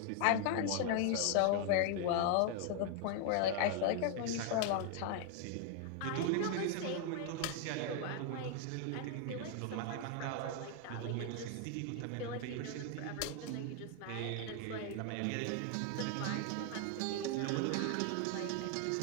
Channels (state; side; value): different; both; correlation 0.00